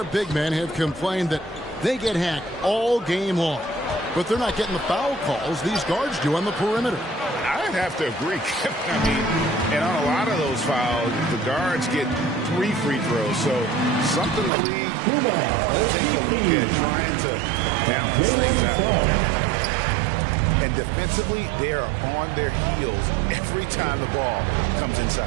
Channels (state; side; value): drops out; left; at 14.5 s